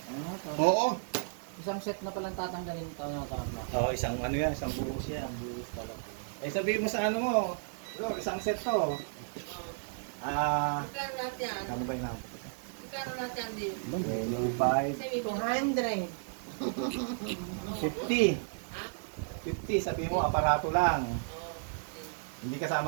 Oo. Isang set na palang tatanggalin ito na tama. Oo, isang ano yan, isang buhos yan. Buhos pala. Eh, sabihin mo sa ano mo, bro, isang set to. Magkano lahat yan? Ano ba yung Magkano lahat yan din? 25, Kasi may 200. 50. 50, sabihin mo, aparato lang. Hindi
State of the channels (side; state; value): left; silent; digital silence